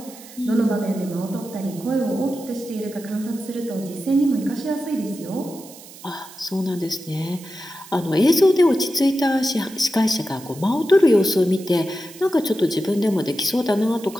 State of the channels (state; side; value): noise; right; hiss, 18 dB below the sound